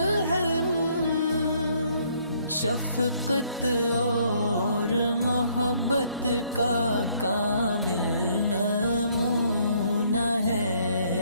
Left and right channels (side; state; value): both; inverted; correlation -0.66